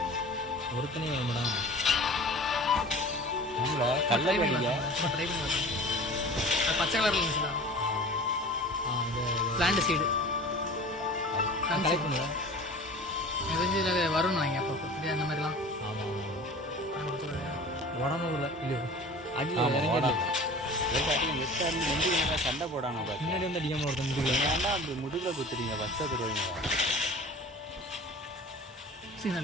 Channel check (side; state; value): both; normal; correlation 0.41